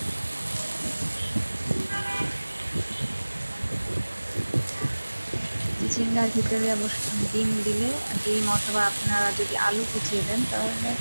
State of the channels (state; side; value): inverted; both; correlation -1.00